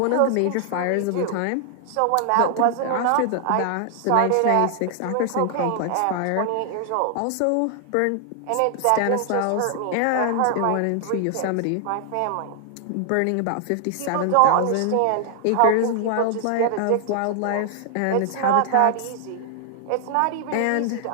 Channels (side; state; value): both; different; correlation 0.00